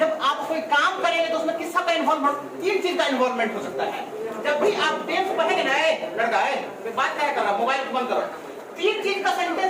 आप कोई काम करेंगे तो उसमें किसका का इन्वॉल्वमेंट? 3 चीज का इन्वॉल्वमेंट हो सकता है। जब भी आप टेंस पढ़ेंगे ना, लड़का है बात क्या कर रहा, मोबाइल बंद करो। 3 चीज का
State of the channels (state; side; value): identical; both; correlation 1.00